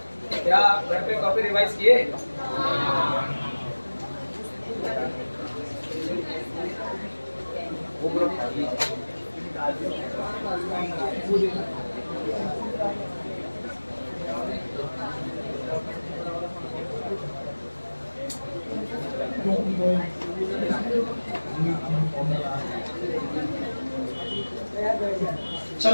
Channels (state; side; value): inverted; both; correlation -1.00